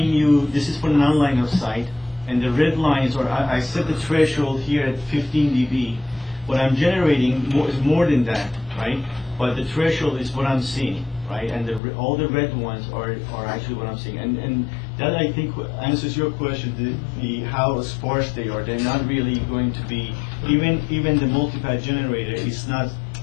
you, this is for non-line of sight, and the red lines are, I set the threshold here at 15 dB, what I'm generating is more than that, right? But the threshold is what I'm seeing, right? And all the red ones are actually what I'm seeing. And that, I think, answers your question, the how sparse they are. They're not really going to be, even the multipath generator is not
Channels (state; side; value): drops out; right; at 11.8 s